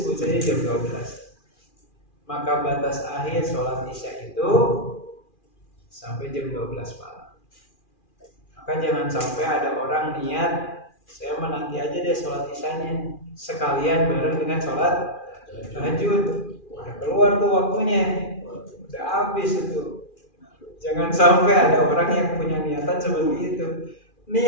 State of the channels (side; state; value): right; late; 2.4 ms